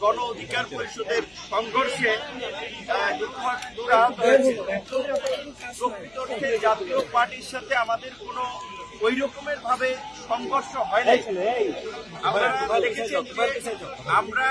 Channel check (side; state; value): left; noise; hum, 29 dB below the sound